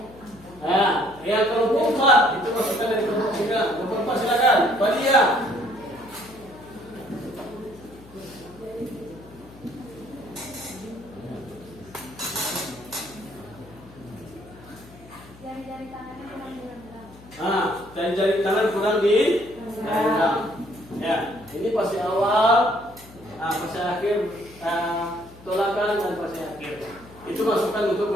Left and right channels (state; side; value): noise; left; hum, 21 dB below the sound